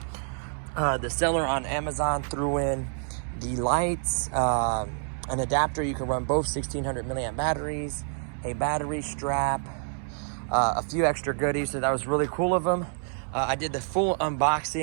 The seller on Amazon threw in the lights, an adapter. You can run both 1600 milliamp batteries, a battery strap, a few extra goodies. So that was really cool of them. I did the full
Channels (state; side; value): silent; left; 60 dB below the other